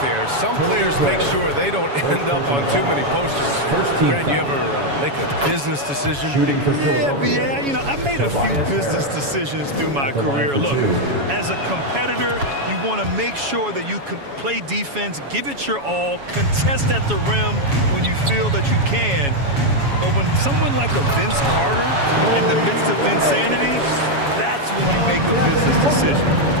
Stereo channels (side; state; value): left; late; 7.2 ms